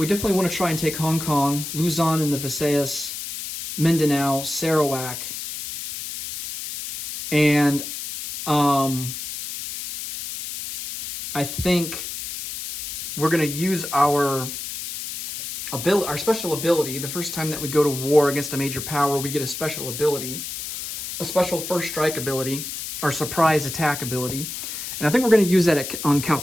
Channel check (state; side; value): noise; left; hiss, 7 dB below the sound